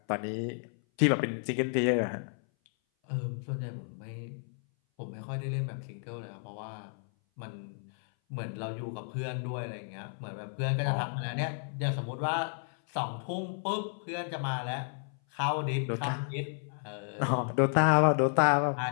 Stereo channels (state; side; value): silent; right; 56 dB below the other